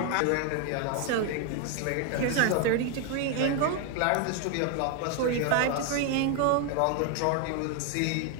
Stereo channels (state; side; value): different; both; correlation 0.01